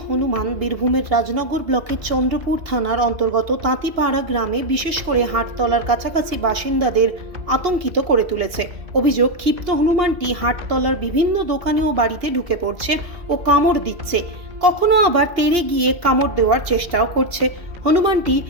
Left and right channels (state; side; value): late; left; 2.8 ms